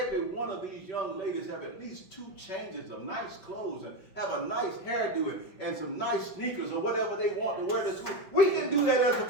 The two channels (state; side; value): late; right; 5.5 ms